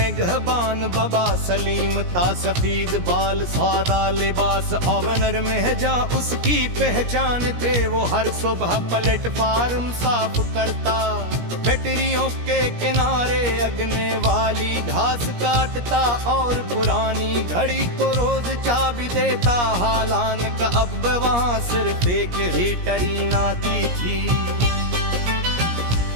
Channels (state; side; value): late; left; 17 ms